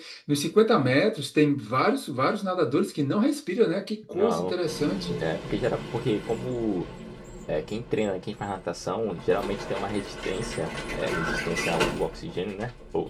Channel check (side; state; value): both; identical; correlation 1.00